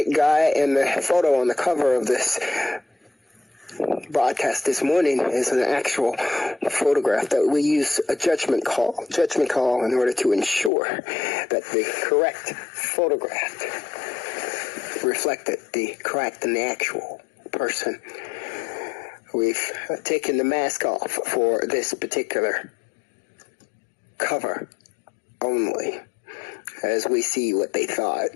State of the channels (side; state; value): right; drops out; at 10.7 s